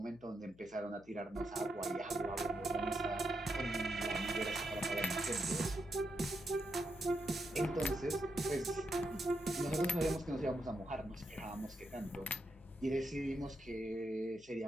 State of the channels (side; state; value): left; noise; hum, 25 dB below the sound